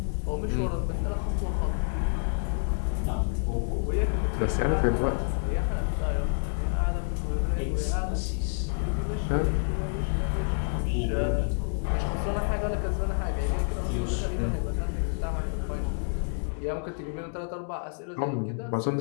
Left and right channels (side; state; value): right; silent; digital silence